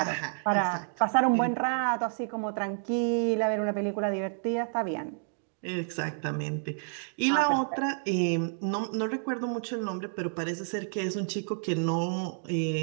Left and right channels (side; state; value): left; silent; digital silence